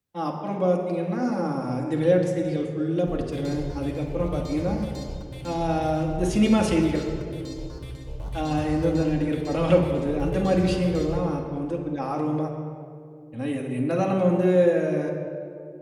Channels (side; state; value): both; identical; correlation 1.00